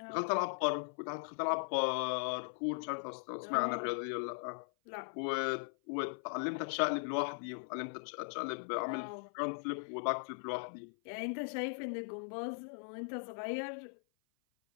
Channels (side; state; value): right; silent; 52 dB below the other